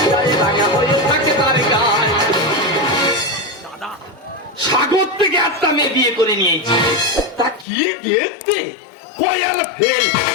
রাঙা হয়ে থাকে তার গায়ে। দাদা, সাগর থেকে একটা মেয়ে বিয়ে করে নিয়েছি। তা কি দেখতে, কয়াল ফেল,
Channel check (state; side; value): drops out; right; at 7.7 s